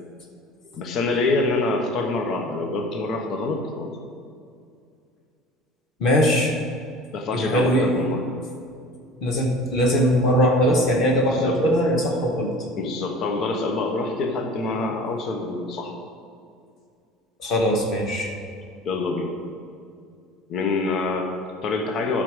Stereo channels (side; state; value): both; normal; correlation 0.42